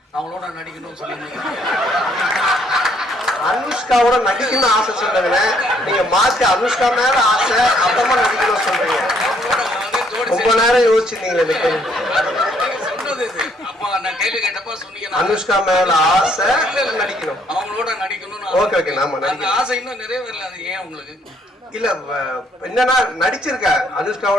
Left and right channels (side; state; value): both; normal; correlation 0.67